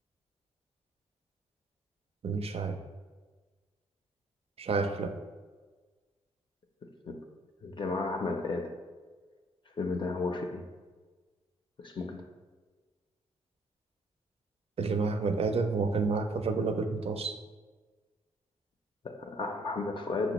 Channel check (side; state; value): both; normal; correlation 0.61